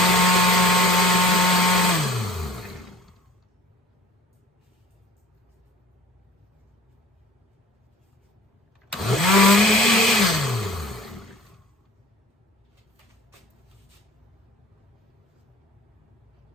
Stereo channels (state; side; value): normal; both; correlation 0.47